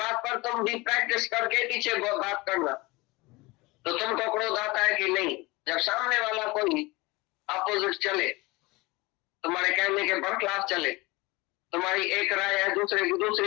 पर तुम भी प्रैक्टिस करके पीछे बात करना, तो तुमको क्रोध आता है कि नहीं। जब सामने वाला कोई अपोजिट चले, तुम्हारे कहने के बरखिलाफ चले, तुम्हारी एक राय है, दूसरे की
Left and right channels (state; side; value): quieter; right; 23.1 dB